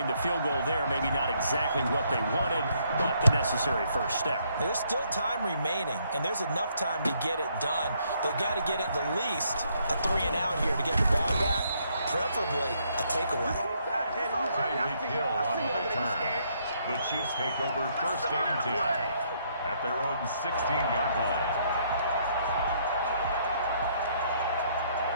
The field goal there, maybe not exactly what they wanted, but the necessary first step. There's still time remaining, and there's enough time to get it done. They've got to get at the least a 3-and-out here to get the ball back, preferably a takeaway. Tyreek Hill on the return. The Chiefs take over 1st and 10 at their own 16-yard line.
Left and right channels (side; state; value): both; inverted; correlation -0.70